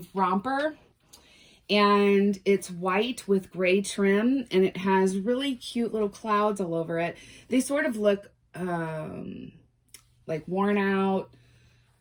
romper, and it's white with gray trim, and it has really cute little clouds all over it. They sort of look like worn out,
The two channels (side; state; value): both; identical; correlation 1.00